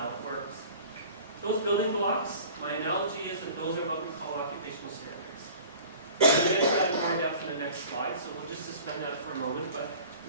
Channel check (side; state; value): both; inverted; correlation -0.44